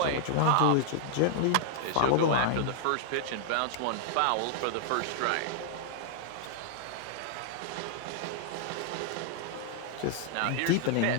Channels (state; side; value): different; both; correlation -0.01